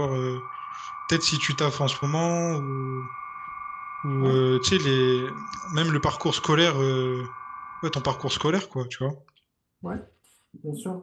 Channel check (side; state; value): both; identical; correlation 1.00